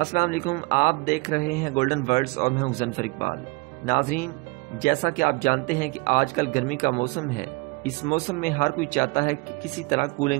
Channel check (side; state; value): left; quieter; 26.7 dB